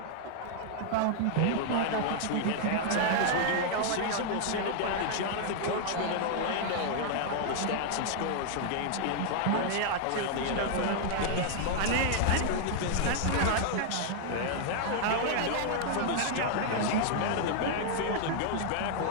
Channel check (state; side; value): different; both; correlation 0.00